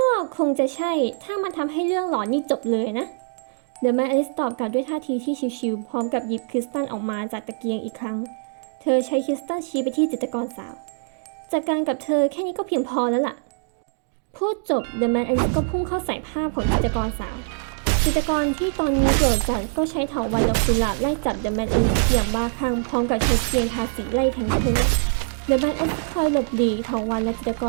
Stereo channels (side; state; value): left; silent; digital silence